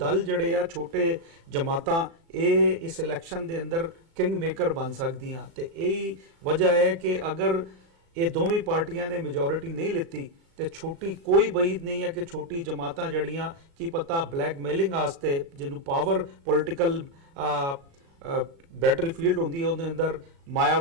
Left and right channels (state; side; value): late; left; 36 ms